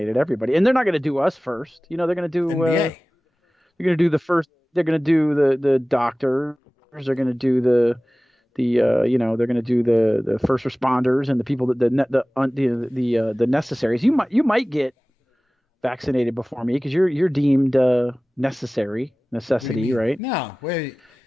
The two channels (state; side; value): normal; both; correlation 0.98